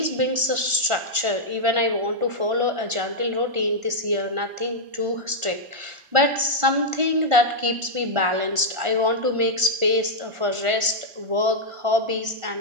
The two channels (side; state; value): left; late; 1.4 ms